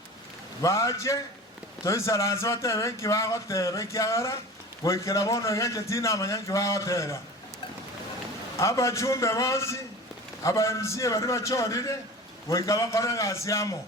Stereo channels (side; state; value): both; normal; correlation 0.37